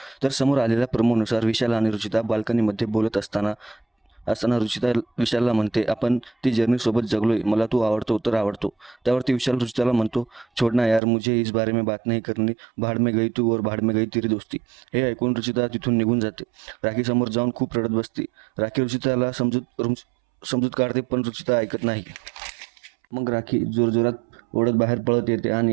तर समोर आलेल्या प्रोमोनुसार विशाल आणि रुचिता बाल्कनीमध्ये बोलत असताना रुचिता विशालला म्हणते, आपण ती जर्नीसोबत जगलोय, मला तू आवडतो तर आवडतो. त्यावरती विशाल रुचिताला म्हणतो, छोडना यार, मुझे इस बारे में बात नहीं करनी, भाड में गई तू और भाड में गई तेरी दोस्ती. हे ऐकून रुचिता तिथून निघून जाते. राखी समोर जाऊन खूप रडत बसते. राखी रुचिताला समजूत काढते, पण रुचिता ऐकत नाही. मग राखी जोरजोरात ओढत बाहेर पळत येते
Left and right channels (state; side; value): drops out; left; at 11.0 s